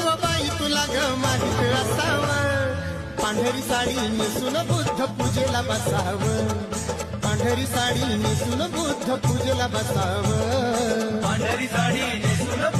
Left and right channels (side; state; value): both; identical; correlation 1.00